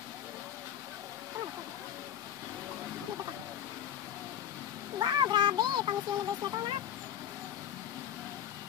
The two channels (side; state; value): right; quieter; 10.2 dB